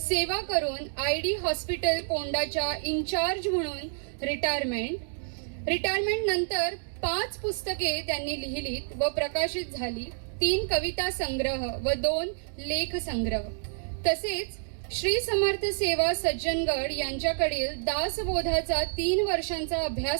करून ID हॉस्पिटल कोंडाच्या इन्चार्ज म्हणून रिटायरमेंट नंतर 5 पुस्तके त्यांनी लिहिलीत व प्रकाशित झाली. 3 कविता संग्रह व 2 लेख संग्रह. तसेच श्री समर्थ सेवा सज्जनगड यांच्याकडील दासबोधाचा 3 वर्षांचा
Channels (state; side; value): silent; left; digital silence